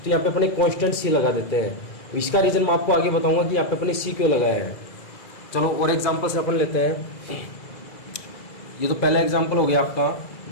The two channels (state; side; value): late; right; 2.0 ms